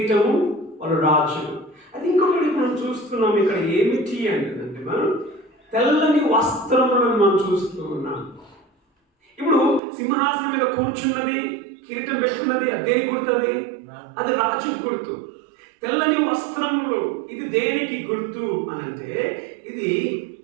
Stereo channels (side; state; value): left; drops out; at 9.8 s